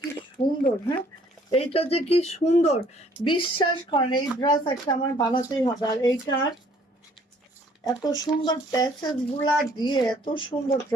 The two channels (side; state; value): both; normal; correlation 0.60